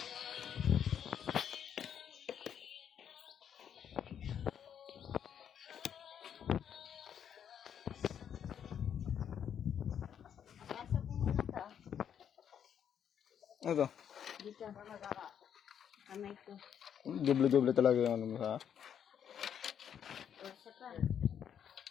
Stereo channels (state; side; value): quieter; right; 8.7 dB